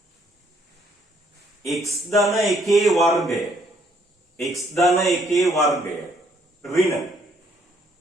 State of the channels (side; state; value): both; normal; correlation 0.67